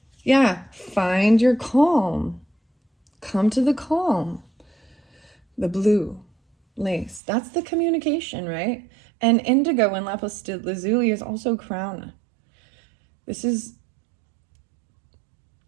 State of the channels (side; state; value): left; drops out; at 7.2 s